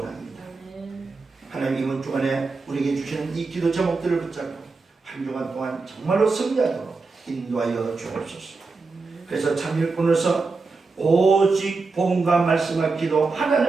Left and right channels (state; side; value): quieter; left; 4.1 dB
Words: 하나님 이번 주간에 우리에게 주시는 이 기도 제목들을 붙잡고 한 주간 동안 정말로 승리하도록 인도하여 주옵소서. 그래서 참 일꾼으로서 오직 복음과 말씀과 기도